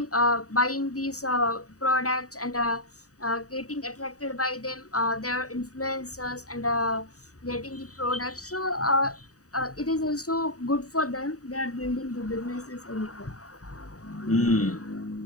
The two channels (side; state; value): right; late; 0.66 ms